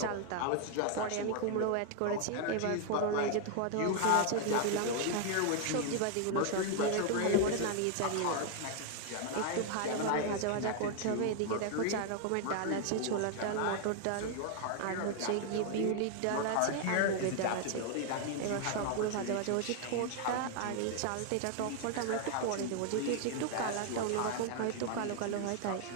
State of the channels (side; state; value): both; different; correlation 0.00